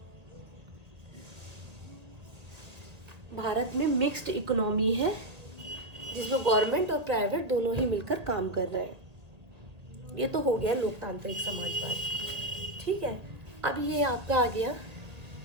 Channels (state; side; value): late; left; 2.0 ms